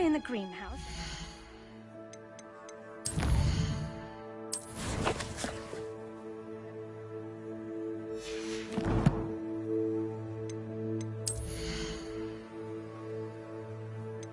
in the greenhouse.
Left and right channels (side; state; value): both; identical; correlation 1.00